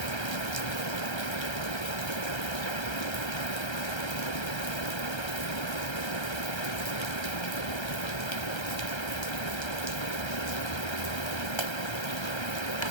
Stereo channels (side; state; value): right; late; 1.3 ms